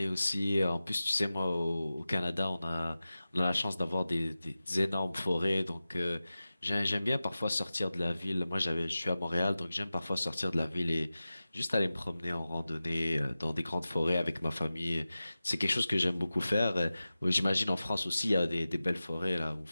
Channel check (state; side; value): inverted; both; correlation -0.95